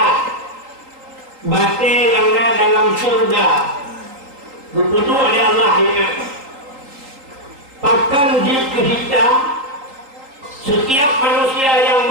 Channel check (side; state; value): left; late; 3.8 ms